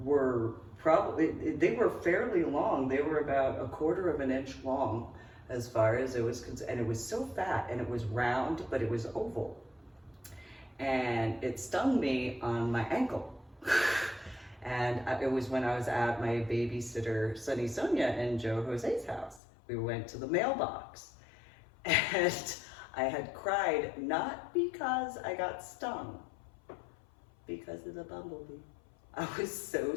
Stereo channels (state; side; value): drops out; right; at 19.4 s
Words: were probably, they were fairly long. They were about 1/4 of an inch long as far as it was concerned. And it was so fat, and it was round, but it was oval. And it stung me on my ankle. And it was when I was at my babysitter, Sunny Sonia, and Joe Jose's house. We went to the mailbox. And I had cried, not because I got stung, because of the bumblebee. I was so